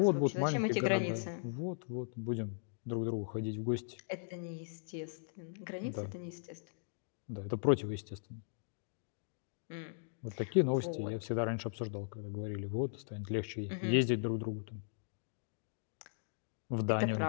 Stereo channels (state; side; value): silent; right; digital silence